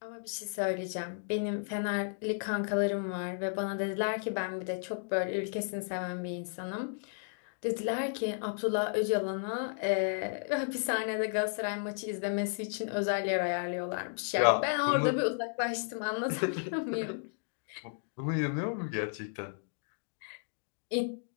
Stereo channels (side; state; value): right; silent; digital silence